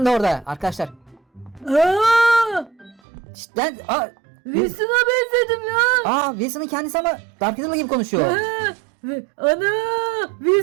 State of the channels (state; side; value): drops out; left; at 3.0 s